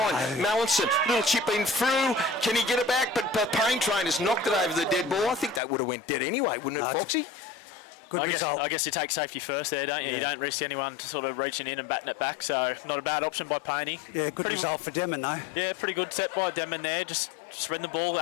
Mallinson, little chip in through. Can he get it back? But Payne Train has knocked it over the dead ball. I think that would have went dead anyway, wouldn't it, Foxy? Good result. I guess you take safety first there, don't you? Yeah. You don't risk anyone sort of reaching in and batting it back, so not a bad option by Payne. Yeah, good result for Denman, though. Yeah, pretty good set by Denman there. Just spreading the ball.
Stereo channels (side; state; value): right; drops out; at 5.6 s